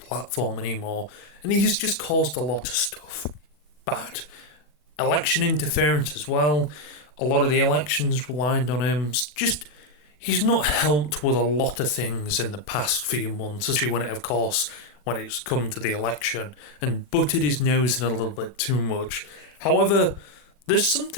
anymore, and he's just caused a lot of stuff bad. Election interference as well. A lot of the elections relied on him. Just he's not helped with a lot of things in the past few months, especially when it's come to the election, and butted his nose in a little bit too much. However, there's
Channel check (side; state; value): right; late; 40 ms